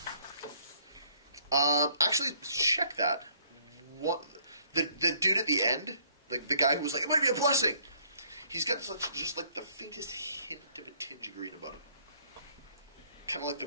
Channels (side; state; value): both; inverted; correlation -0.63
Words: Actually, check that. What the dude at the end, like the guy who was like, it might be a blessing. He's got just like the faintest hint of a tinge of green about him. Kind of like the